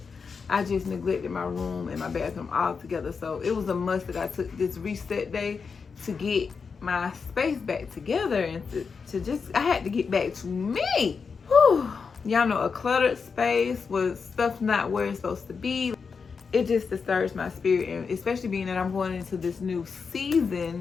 I just neglected my room and my bathroom altogether. So it was a must that I took this reset day to get my space back together and to just, I had to get back to me. Whew. Y'all know, a cluttered space with stuff not where it's supposed to be, it just disturbs my spirit. And especially being that I'm going into this new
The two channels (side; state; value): right; quieter; 5.4 dB